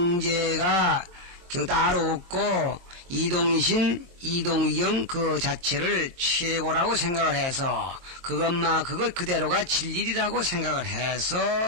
따로 없고 이동이신 이동위경 그 자체를 최고라고 생각을 해서 그것 그대로가 진리라고 생각을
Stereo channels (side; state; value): left; late; 23 ms